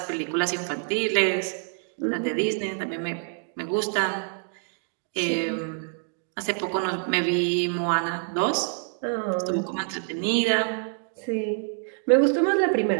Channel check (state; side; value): silent; left; 60 dB below the other